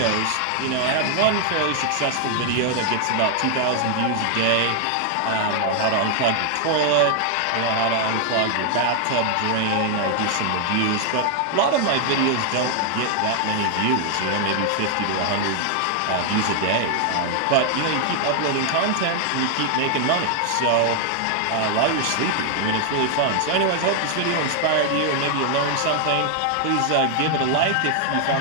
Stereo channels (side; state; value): both; different; correlation 0.00